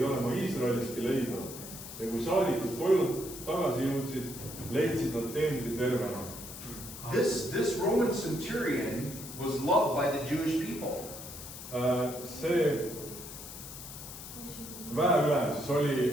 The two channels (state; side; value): noise; left; hiss, 12 dB below the sound